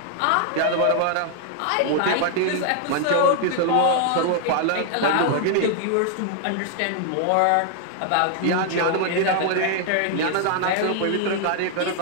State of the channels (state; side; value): different; both; correlation 0.00